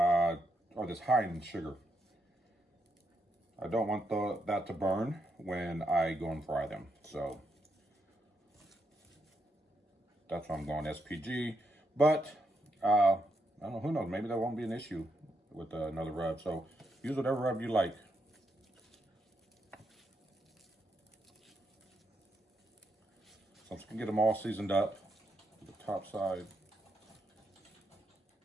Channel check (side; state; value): both; normal; correlation 0.80